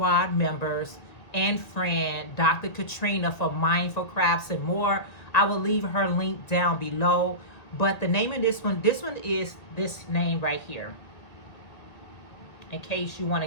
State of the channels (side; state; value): right; late; 1.9 ms